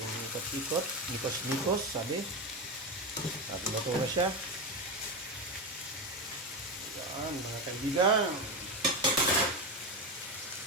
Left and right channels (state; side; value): normal; both; correlation 0.15